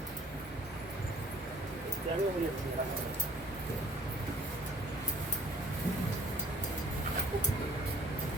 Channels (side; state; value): both; normal; correlation 0.48